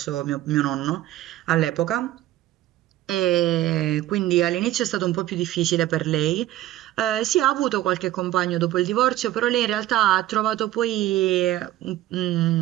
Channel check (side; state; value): left; quieter; 14.6 dB